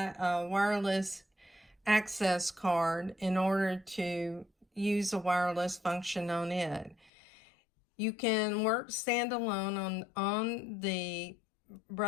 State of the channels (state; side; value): drops out; right; at 7.1 s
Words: a wireless access card in order to use a wireless function on it. You can work standalone on the